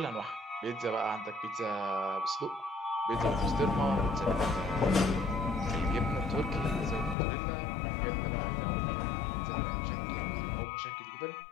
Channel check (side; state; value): right; drops out; at 7.2 s